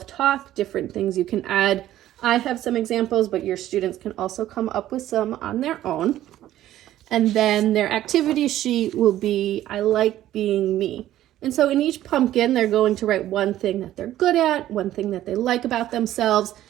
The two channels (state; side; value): quieter; left; 13.3 dB